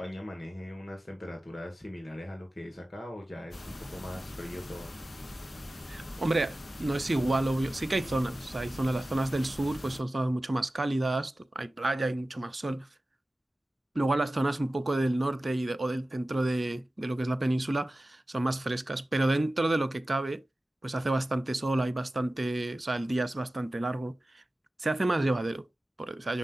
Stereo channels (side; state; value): both; normal; correlation 0.96